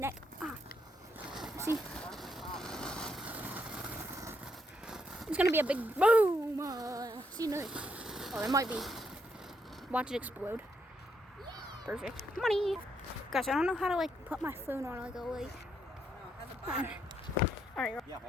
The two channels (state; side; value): normal; both; correlation 0.76